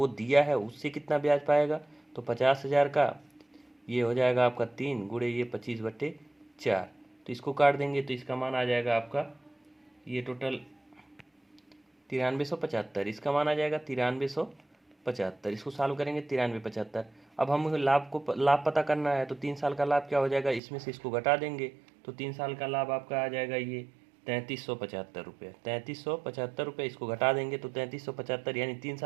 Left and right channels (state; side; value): drops out; left; at 20.6 s